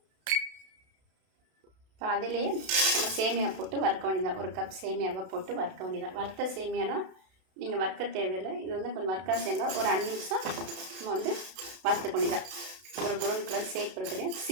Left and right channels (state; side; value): late; left; 32 ms